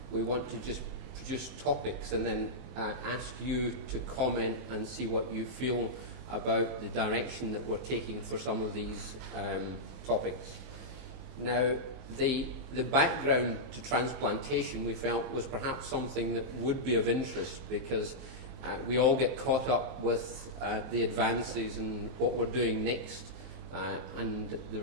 We want to just produce topics and then ask you to comment and see what you feel about the direction that we're taking for some of these topics. Now, the background to transplantation we felt was perhaps something that would be of interest because we all get caught up with the advances and what we're doing next and the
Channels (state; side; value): late; left; 23 ms